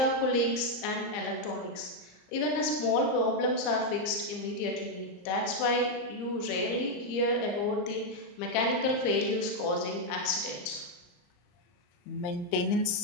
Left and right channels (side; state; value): right; late; 34 ms